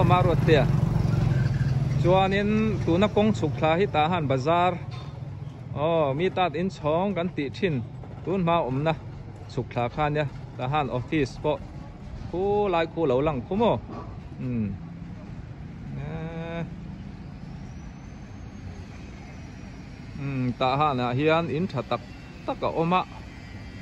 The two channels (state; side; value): identical; both; correlation 1.00